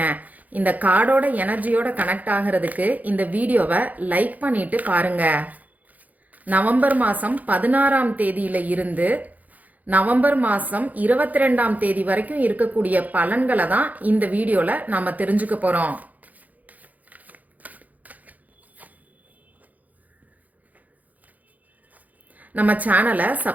இந்த கார்டோட எனர்ஜியோட கனெக்ட் ஆகிறதுக்கு இந்த வீடியோவை லைக் பண்ணிட்டு பாருங்க. நவம்பர் மாதம் 16ஆம் தேதியில இருந்து நவம்பர் மாதம் 22ஆம் தேதி வரைக்கும் இருக்கக்கூடிய பலன்களை தான் இந்த வீடியோல நாம தெரிஞ்சுக்க போறோம். நம்ம சேனலை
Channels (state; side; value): late; left; 0.079 ms